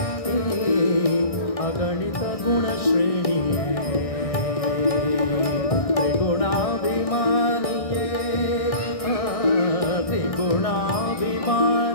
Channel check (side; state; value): right; late; 1.6 ms